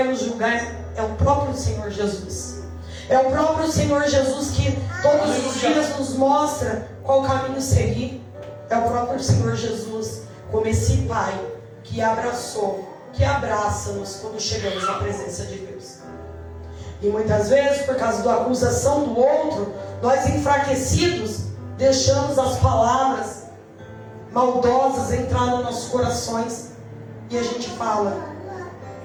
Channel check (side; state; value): both; identical; correlation 1.00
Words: nos julgar é o próprio Senhor Jesus. É o próprio Senhor Jesus que todos os dias nos mostra qual caminho seguir. É o próprio Senhor Jesus, como esse Pai que abraçou, que abraça-nos quando chegamos na presença de Deus. E muitas vezes, por causa da acusação do outro, nós enfraquecidos, deixamos as palavras maldosas entrar nos nossos corações. E a gente fala,